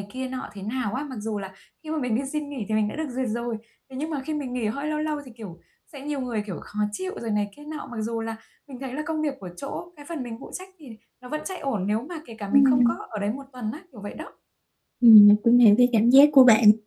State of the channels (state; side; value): identical; both; correlation 1.00